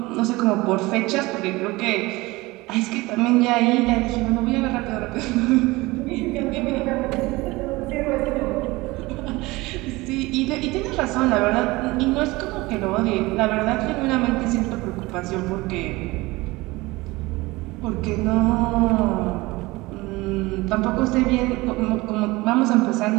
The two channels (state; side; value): quieter; left; 21.4 dB